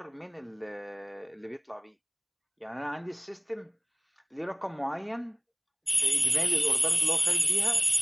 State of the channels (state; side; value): identical; both; correlation 1.00